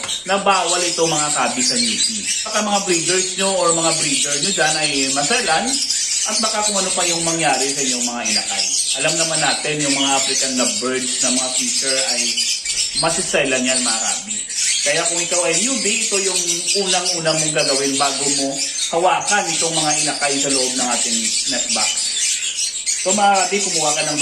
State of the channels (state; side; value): identical; both; correlation 1.00